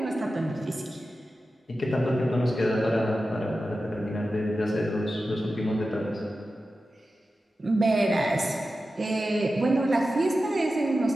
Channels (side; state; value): both; normal; correlation 0.93